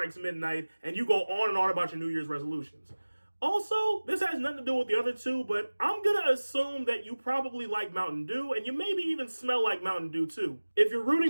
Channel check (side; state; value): both; inverted; correlation -1.00